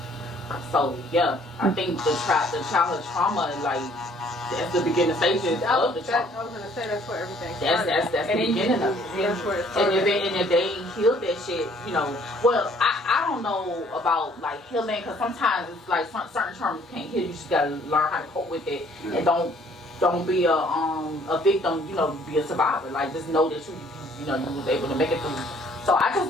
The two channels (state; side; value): normal; both; correlation 0.60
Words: So yeah, I think the childhood trauma, like, that's the beginning stages of the trauma. I was gonna say that's where everything That's the beginning of it. That's where it started. And if they ain't healed that shit, you know, well, I don't know about like healing, because sometimes it's like certain terms can't heal. You just gotta learn how to cope with it, and don't be a victim. You know, be a survivor. Like, just know that you know you was able to make it through. So